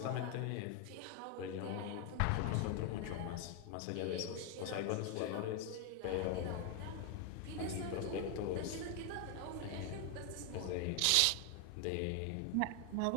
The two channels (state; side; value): different; both; correlation 0.01